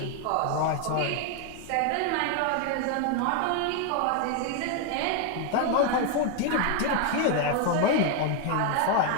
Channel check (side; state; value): both; different; correlation 0.01